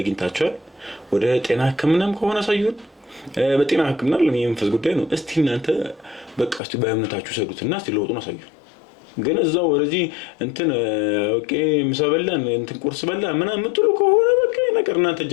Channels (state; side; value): drops out; right; at 6.6 s